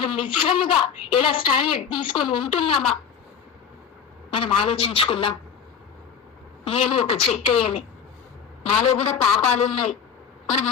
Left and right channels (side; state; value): right; quieter; 7.5 dB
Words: నిజంగా ఎలా స్టాండర్డ్ తీసుకొని ఉంటున్నామా మనం ఆలోచించుకుందాం. నేను ఒక చెక్కయ్యని, నాలో కూడా పాపాలు ఉన్నాయి. మనం